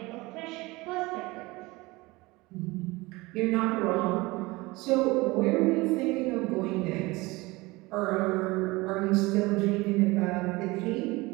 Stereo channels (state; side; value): quieter; left; 22.3 dB